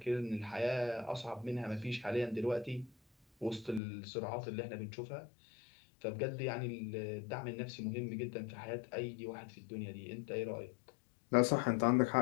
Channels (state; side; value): drops out; right; at 3.8 s